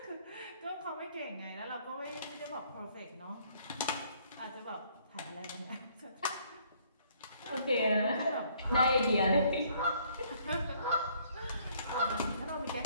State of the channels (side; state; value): both; inverted; correlation -0.63